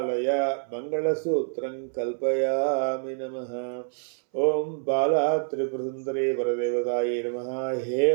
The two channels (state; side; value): silent; left; 60 dB below the other